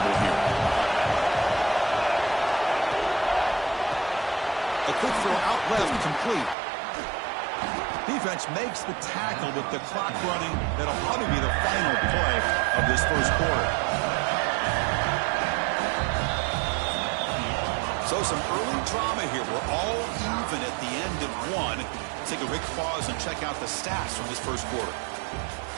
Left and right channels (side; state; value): left; drops out; at 6.6 s